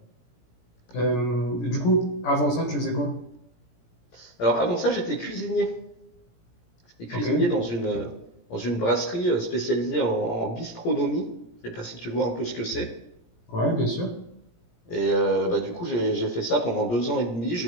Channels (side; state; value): right; late; 17 ms